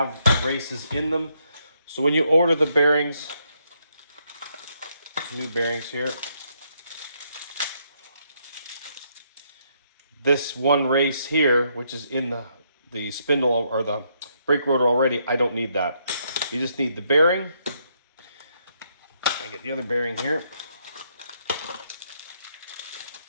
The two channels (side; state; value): both; inverted; correlation -0.74